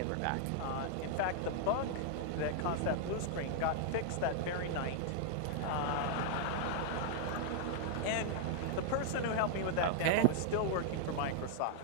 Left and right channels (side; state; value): both; different; correlation -0.01